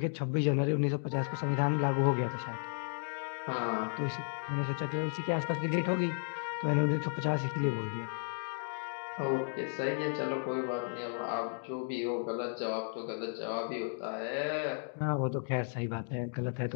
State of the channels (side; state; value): right; silent; 55 dB below the other